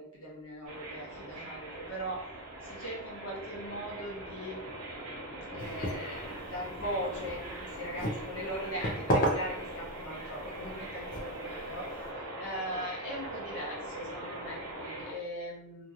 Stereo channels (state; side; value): normal; both; correlation 0.06